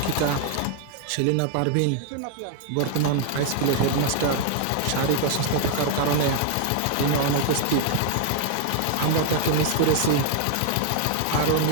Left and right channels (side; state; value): both; different; correlation 0.00